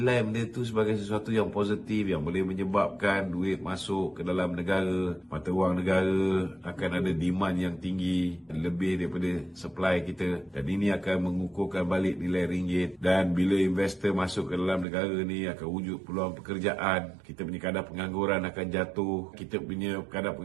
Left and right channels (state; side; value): drops out; left; at 14.9 s